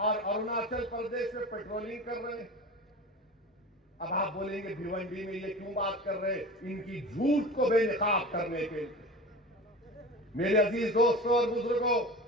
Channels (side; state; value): both; normal; correlation 0.33